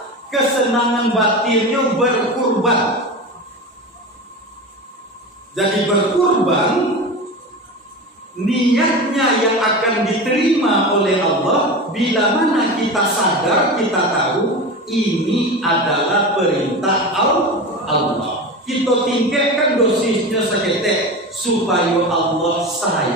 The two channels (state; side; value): normal; both; correlation 0.27